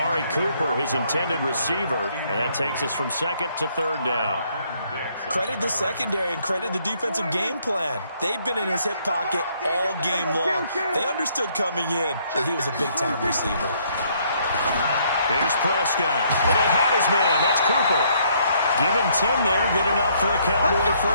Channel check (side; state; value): both; inverted; correlation -0.68